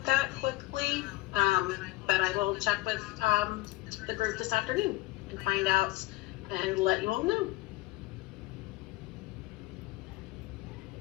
that quickly, but I will check with the group this afternoon and find out and let you all know.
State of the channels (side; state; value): right; quieter; 19.1 dB